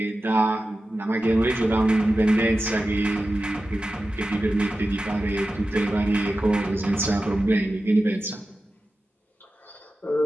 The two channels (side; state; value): both; normal; correlation 0.93